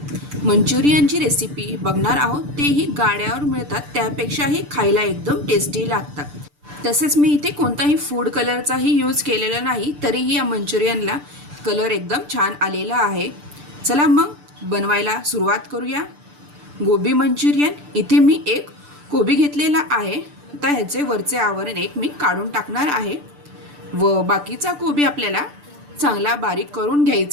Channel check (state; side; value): late; left; 6.8 ms